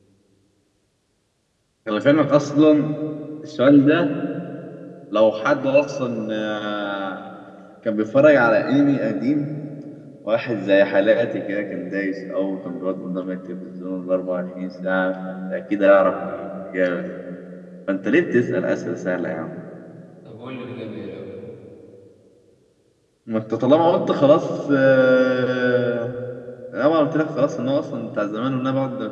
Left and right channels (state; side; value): identical; both; correlation 1.00